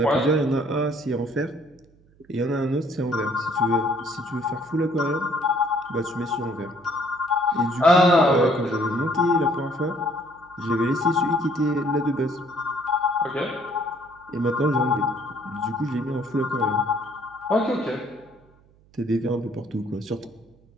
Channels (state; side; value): noise; right; hum, 30 dB below the sound